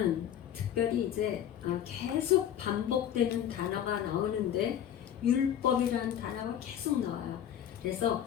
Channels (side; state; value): right; quieter; 10.0 dB